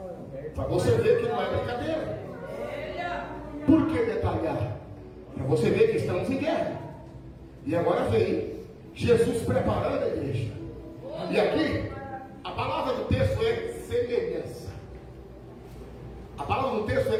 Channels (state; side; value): identical; both; correlation 1.00